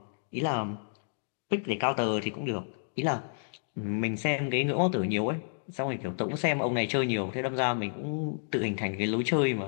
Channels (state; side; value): silent; right; digital silence